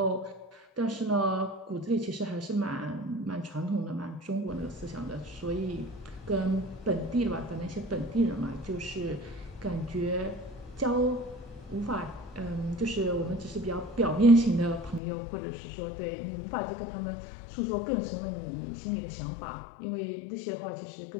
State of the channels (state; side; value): drops out; right; at 15.0 s